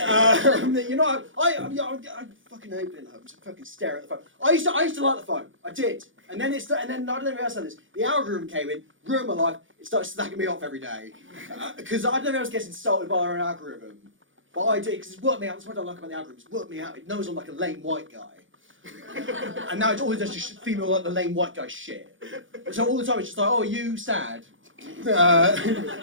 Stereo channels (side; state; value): left; late; 0.57 ms